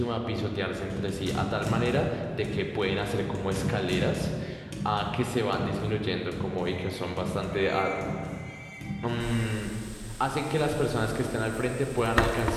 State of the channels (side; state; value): both; identical; correlation 1.00